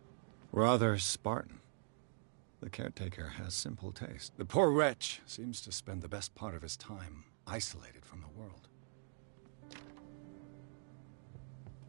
Rather Spartan. The caretaker has simple taste. The poor wretch seems to spend the best part of his time isolated from the world.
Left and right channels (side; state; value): left; silent; digital silence